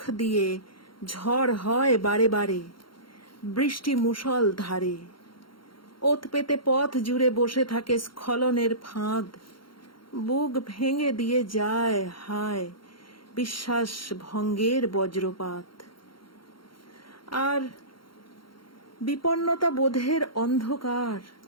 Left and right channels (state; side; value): late; right; 0.73 ms